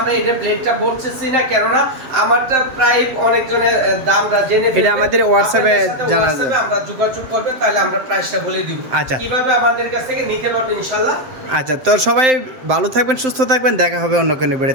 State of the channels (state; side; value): late; left; 7.7 ms